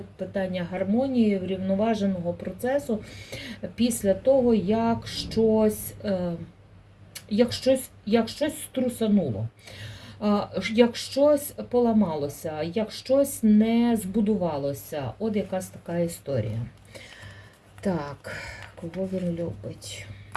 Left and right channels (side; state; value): both; identical; correlation 1.00